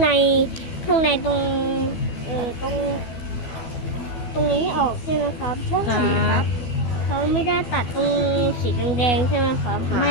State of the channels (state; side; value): late; right; 12 ms